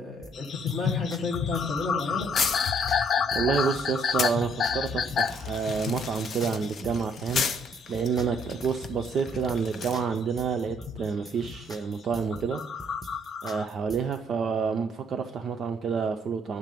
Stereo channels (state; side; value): normal; both; correlation 0.65